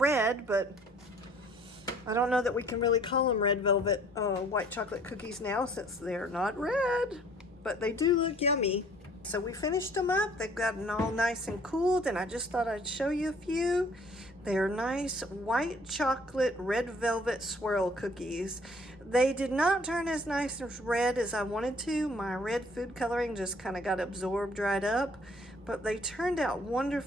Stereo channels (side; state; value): both; normal; correlation 0.57